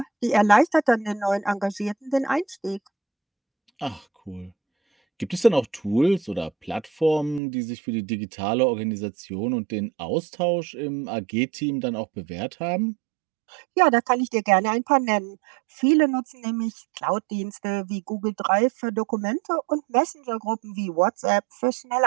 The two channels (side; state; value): left; drops out; at 7.4 s